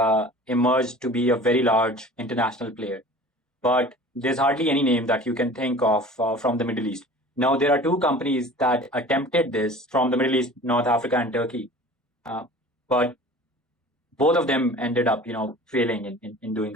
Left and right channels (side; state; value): both; normal; correlation 0.42